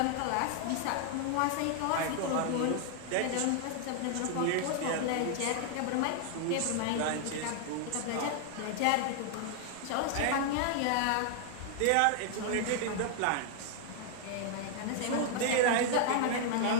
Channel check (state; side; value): different; both; correlation 0.00